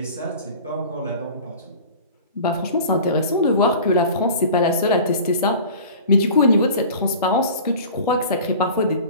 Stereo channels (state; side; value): inverted; both; correlation -0.40